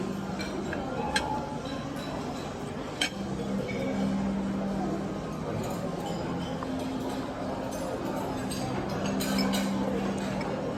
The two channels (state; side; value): identical; both; correlation 1.00